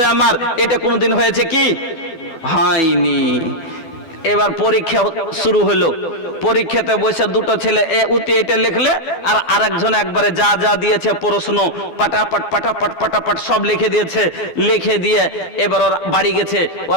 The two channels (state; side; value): late; right; 12 ms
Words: আমার। এটা কোনোদিন হয়েছে কি? হয়নি। এবার পরীক্ষা শুরু হলো, পরীক্ষাতে বসে 2টো ছেলে উতি এটা লিখলে, আর আরেকজন একবারে যা যা দিয়েছে প্রশ্ন পাটাপাট পাটাপাট পাটাপাট সব লিখে দিয়েছে। লিখে দিয়ে এবার ওর বাড়ি গেছে, ওর